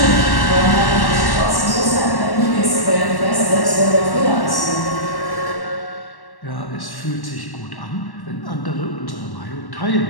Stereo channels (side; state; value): right; late; 1.1 ms